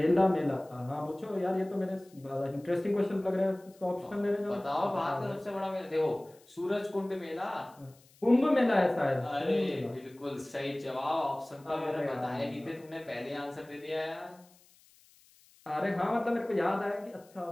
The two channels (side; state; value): left; noise; hiss, 28 dB below the sound